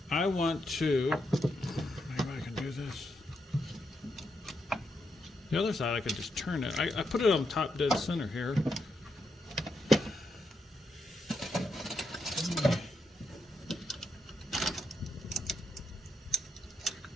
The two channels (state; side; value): normal; both; correlation 0.81